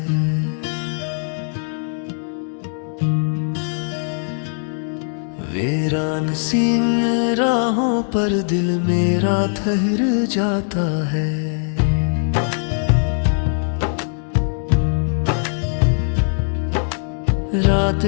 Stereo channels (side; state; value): right; silent; digital silence